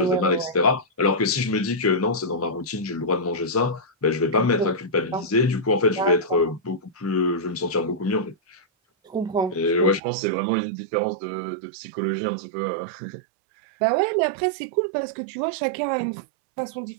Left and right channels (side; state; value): left; drops out; at 10.0 s